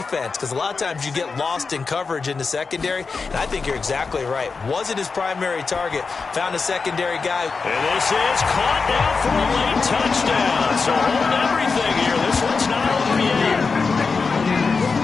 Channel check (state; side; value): quieter; right; 4.7 dB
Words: because a lot of times you get lost in coverage in the secondary, and I think you're exactly right. Wasn't his primary target. Found a secondary guy. And this is caught down for a late touchdown. So hold everything here. This one's not over yet.